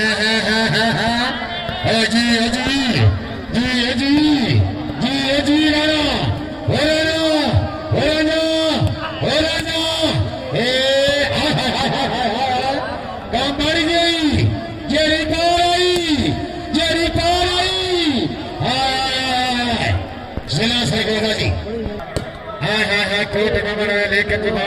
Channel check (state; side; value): identical; both; correlation 1.00